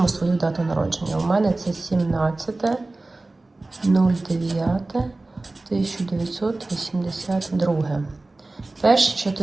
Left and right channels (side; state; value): left; quieter; 3.1 dB